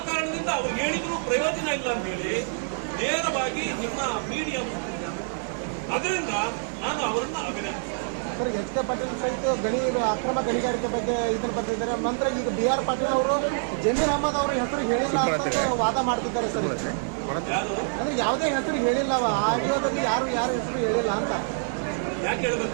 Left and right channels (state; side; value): silent; left; digital silence